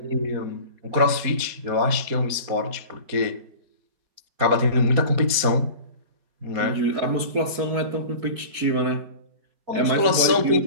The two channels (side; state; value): left; late; 4.3 ms